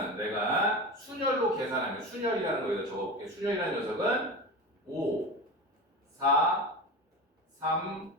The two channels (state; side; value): normal; both; correlation 0.27